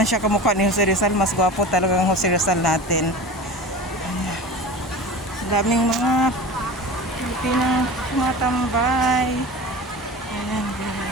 siya kamukha ni Jose Rizal. Mas gwapo talaga ang Jose Rizal natin. Daming mga Pilipinang tumatambay. Ayan,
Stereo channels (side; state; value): both; normal; correlation 0.34